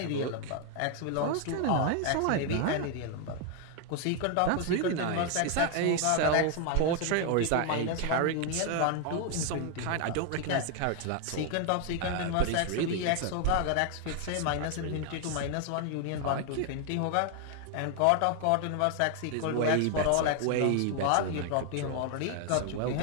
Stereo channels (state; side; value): different; both; correlation 0.00